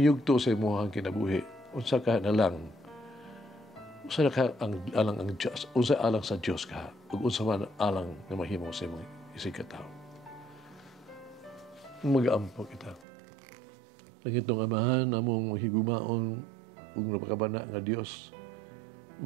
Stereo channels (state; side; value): drops out; left; at 13.1 s